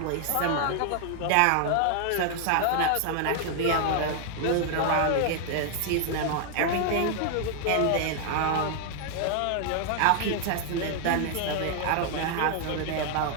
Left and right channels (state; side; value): different; both; correlation 0.00